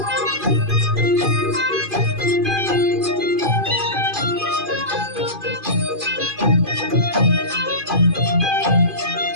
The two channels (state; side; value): late; left; 2.4 ms